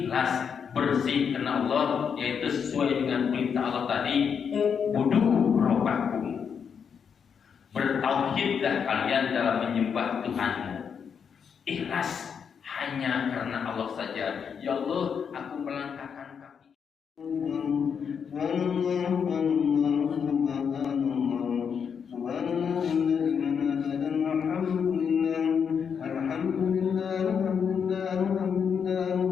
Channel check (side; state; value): right; quieter; 6.9 dB